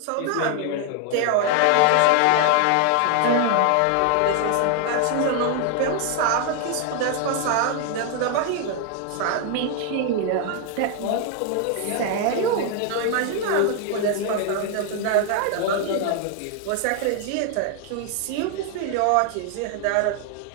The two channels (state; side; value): different; both; correlation 0.00